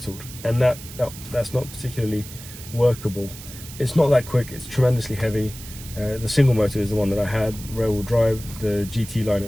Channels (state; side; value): noise; right; hiss, 15 dB below the sound